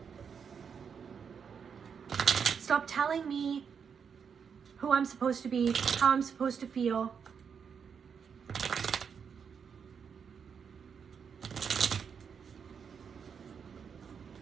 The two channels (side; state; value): left; quieter; 6.7 dB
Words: Stop telling me who I'm supposed to be, how I'm supposed to feel.